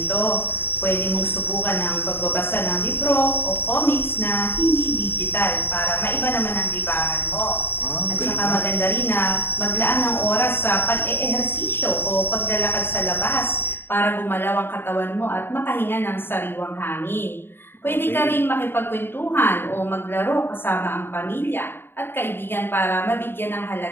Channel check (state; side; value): late; right; 0.10 ms